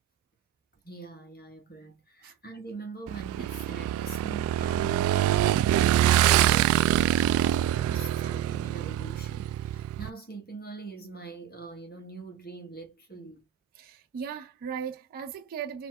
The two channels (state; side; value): quieter; left; 11.2 dB